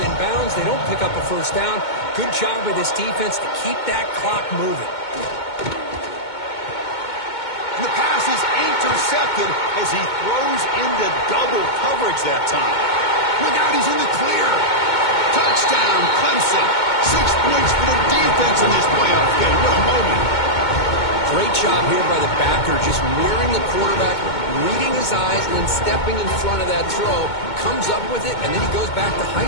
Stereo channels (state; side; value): late; right; 2.2 ms